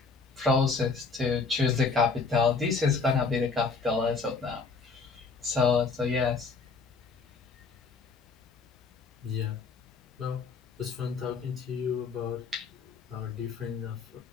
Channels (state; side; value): quieter; right; 4.7 dB